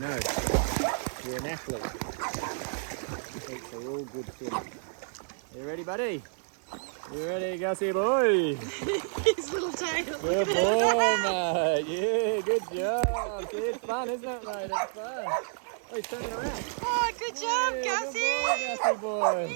You're an athlete. Athletes are all good swimmers. You ready, buddy? You ready, Gussie boy? His little tail. Good boy, mate. Yeah, good job. See, it's fun, isn't it, mate? It's fun. Oh, he's turning around. Oh, good job, Yeah, Gussie. Good boy, Gussie boy.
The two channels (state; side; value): silent; left; digital silence